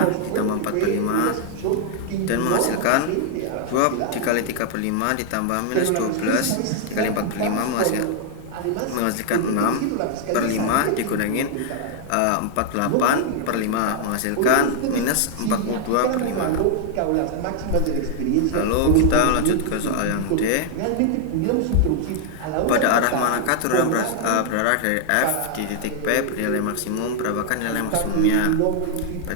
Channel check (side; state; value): both; different; correlation 0.00